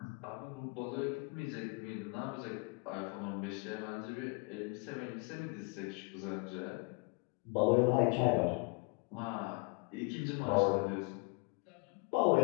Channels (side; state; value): right; quieter; 32.0 dB